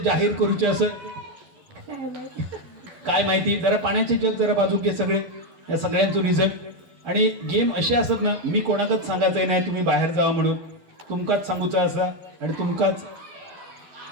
करूचे असं काय माहिती. जरा पाण्याचे जग जरा बाजूक घे सगळे, या सगळ्यांचं रिझल्ट. आणि गेम असे असत ना, मी कोणाकच सांगायचंय नाही तुम्ही बाहेर जावा म्हणून. तुमकाच सांगूचा असा आणि तुमकाच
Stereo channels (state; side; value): late; left; 12 ms